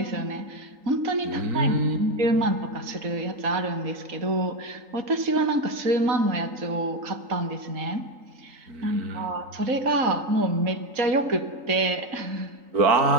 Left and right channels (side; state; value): left; late; 3.8 ms